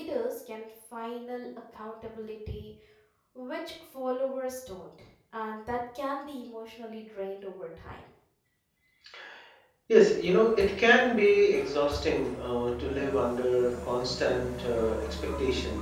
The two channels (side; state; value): both; identical; correlation 1.00